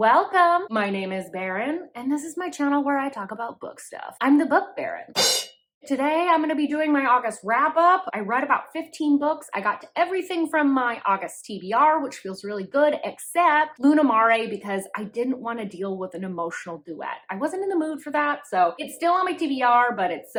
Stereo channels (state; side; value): identical; both; correlation 1.00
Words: My name is Baron, and this is my channel where I talk about book stuff. I'm the Book Baron. Today, I'm going to be doing my August wrap-up. I read about 15 books. I got to everything from my August TBR, which feels really good, except Luna Mare, because I didn't want to deal with an emotional duet. I wasn't in the mood for that, so it's still on my TBR, but it's